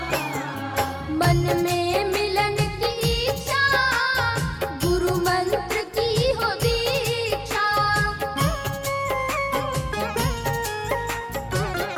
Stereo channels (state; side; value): identical; both; correlation 1.00